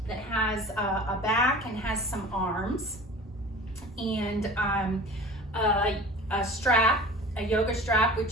that has a back and has some arms, and a strap, a yoga strap,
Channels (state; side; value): normal; both; correlation 0.40